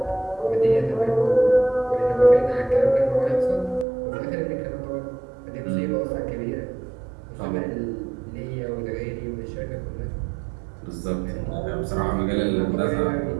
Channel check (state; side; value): drops out; left; at 3.9 s